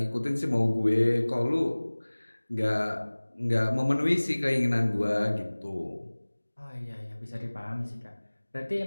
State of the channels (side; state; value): both; inverted; correlation -1.00